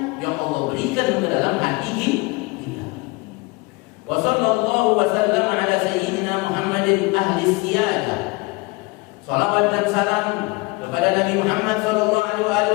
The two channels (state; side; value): quieter; right; 25.6 dB